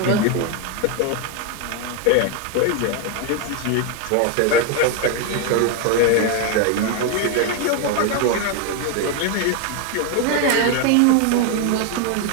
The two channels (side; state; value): both; different; correlation 0.01